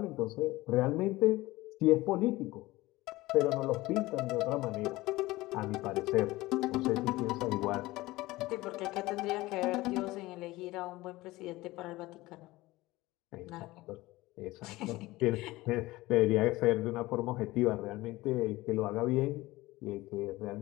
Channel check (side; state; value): right; quieter; 19.2 dB